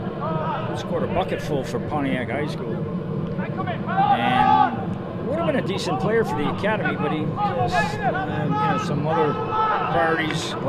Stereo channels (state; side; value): identical; both; correlation 1.00